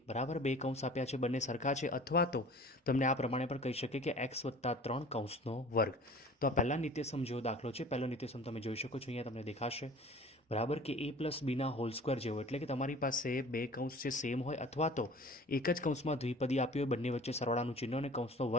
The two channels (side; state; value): both; normal; correlation 0.45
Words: બરાબર બે કૌંસ આપ્યા છે, બંને સરખા છે, અથવા તો તમને આ પ્રમાણે પણ કહી શકે કે x+3 કૌંસનો વર્ગ. તો આ પહેલા નિત્યસમ જેવો દાખલો છે. પહેલો નિત્યસમ તમે જોઈ શકો છો, અહીંયા તમને દેખાશે બરાબર કે a+bના હોલ સ્ક્વેર જેવો, એટલે કે તમારી પાસે બે કૌંસ છે સેમ હોય, અથવા તો એક જ કૌંસમાં દ્વિપદી આપી હોય, બંને વચ્ચે સરવાળાનું ચિહ્ન અને કૌંસનો